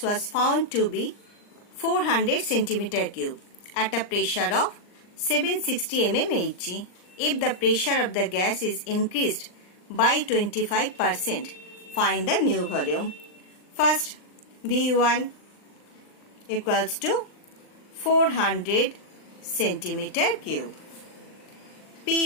was found to be 400 centimeter cube at a pressure of 760 mm Hg. If the pressure of the gas is increased by 25%, find the new volume. First, V1 equals to 400 centimeter cube.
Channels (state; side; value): late; right; 39 ms